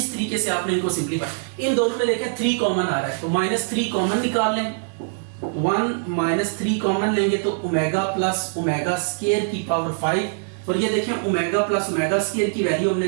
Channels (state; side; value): silent; left; 63 dB below the other